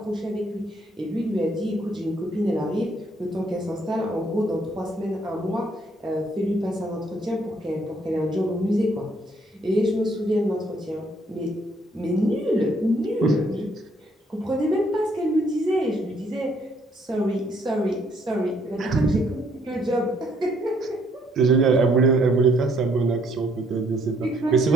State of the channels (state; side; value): normal; both; correlation 0.68